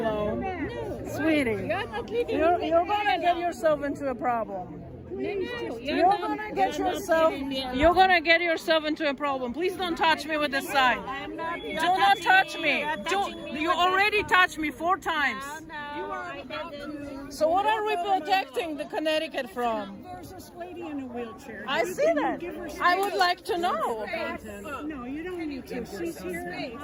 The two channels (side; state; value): both; identical; correlation 1.00